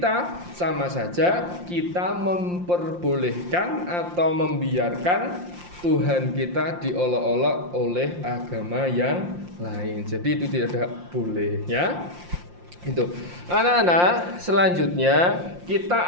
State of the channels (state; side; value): late; left; 5.7 ms